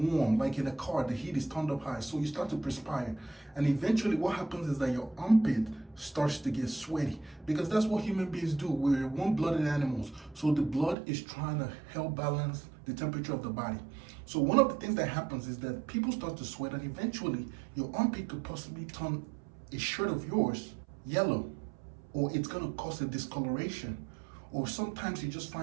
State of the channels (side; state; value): left; drops out; at 11.0 s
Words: like in a car, the heat is turned up high, so you start to perspire. And eventually what happens is that your armpit starts to get sweaty, because that's what human beings do. We're warm-blooded animals, so the blood is trying to help balance the temperature of the body. So one of the things that happens is that people start to sweat, and eventually your armpit could possibly turn a shirt of yours yellow, or it's going to cause a discoloration, or sometimes you just